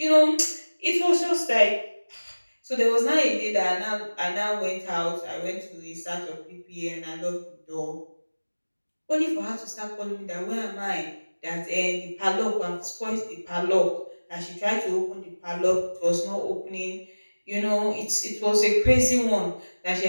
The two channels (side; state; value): both; inverted; correlation -1.00